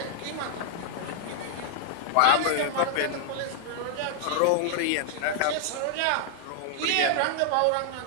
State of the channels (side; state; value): both; different; correlation -0.01